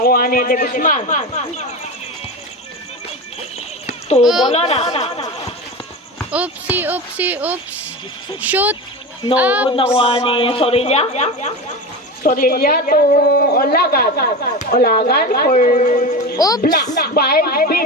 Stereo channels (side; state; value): both; normal; correlation 0.25